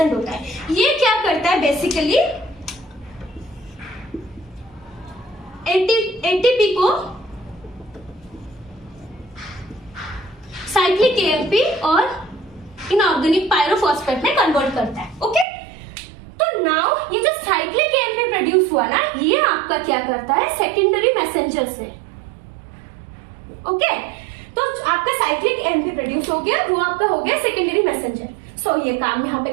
होता है। ये क्या करता है, बेसिकली एटीपी को साइक्लिक एएमपी और इनऑर्गेनिक पायरोफॉस्फेट में कन्वर्ट करता है, ओके। तो नाउ ये जो साइक्लिक एएमपी प्रोड्यूस हुआ ना, ये आपका क्या करता है, सेकेंडरी मैसेंजर से, ओके। तो आपका साइक्लिक एएमपी प्रोड्यूस हो गया, वो आपका हो गया सेकेंडरी मैसेंजर। सो ये काम यहाँ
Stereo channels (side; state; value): left; drops out; at 15.5 s